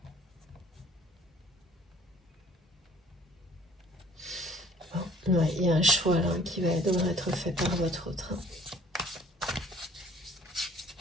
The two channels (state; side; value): normal; both; correlation 0.54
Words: Bon, ouais, il y a un choix là qui devrait être fait par votre autre.